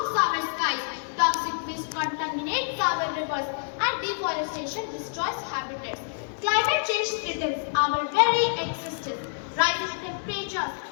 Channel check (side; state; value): right; silent; digital silence